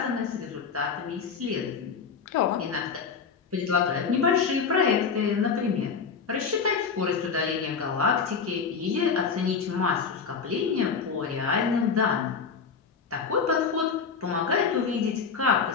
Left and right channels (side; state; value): right; quieter; 5.7 dB